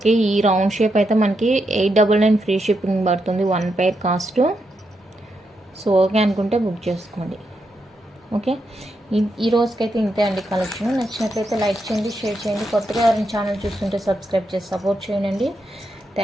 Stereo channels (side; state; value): both; normal; correlation 0.83